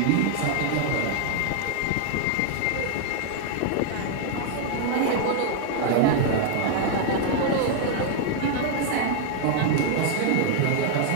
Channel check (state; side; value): different; both; correlation 0.00